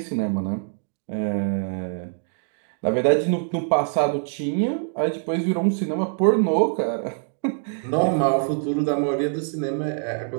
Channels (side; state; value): left; silent; digital silence